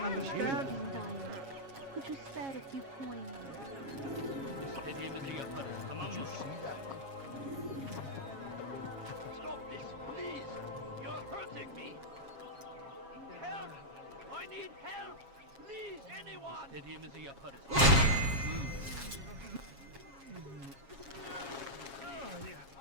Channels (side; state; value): left; late; 7.3 ms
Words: understand? King dying. Could you spare a few coins? İstediğimizi yaparız, tamam mı? Stop this, please. You're hurting me. Help! I need help. Please, anyone. İstediğimizi yaparız.